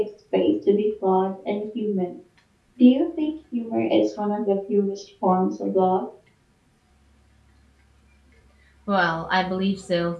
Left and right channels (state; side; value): identical; both; correlation 1.00